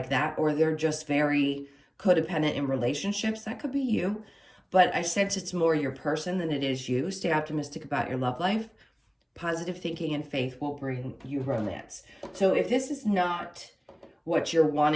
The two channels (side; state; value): both; identical; correlation 1.00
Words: that, or they're just very codependent in relationships. That could be you. But I sense it's more your person than it is you. Stay optimistic about your love life. Positive thinking and faith will bring you romance. So if this is not what you're